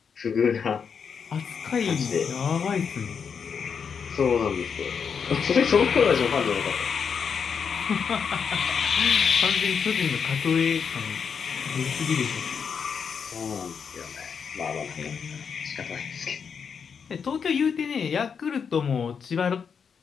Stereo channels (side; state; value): right; quieter; 6.5 dB